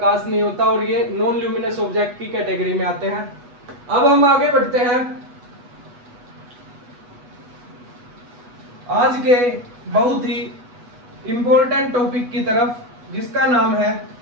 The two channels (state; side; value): late; left; 8.1 ms